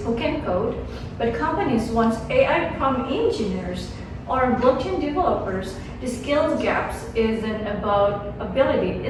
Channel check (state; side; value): identical; both; correlation 1.00